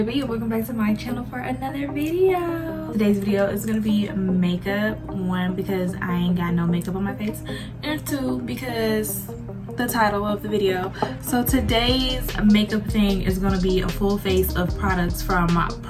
B. Welcome back to my channel for another video. Today's video is gonna be makeup. One, because I ain't got no makeup on my face, and two, because the title of the video. So today's makeup thing is gonna be a full face of products from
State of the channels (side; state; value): both; identical; correlation 1.00